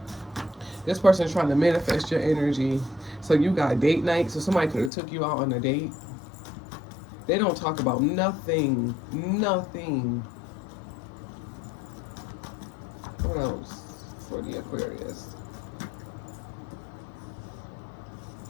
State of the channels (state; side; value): drops out; right; at 4.9 s